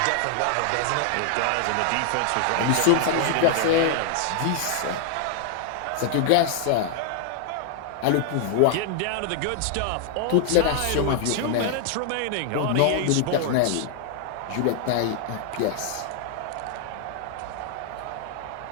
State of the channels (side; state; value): both; different; correlation 0.00